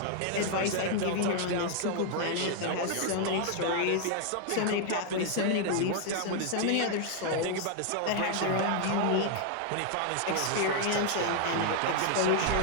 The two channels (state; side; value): different; both; correlation 0.00